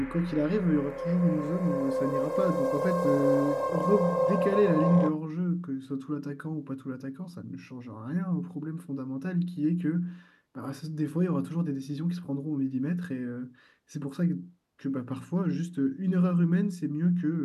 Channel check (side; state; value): both; identical; correlation 1.00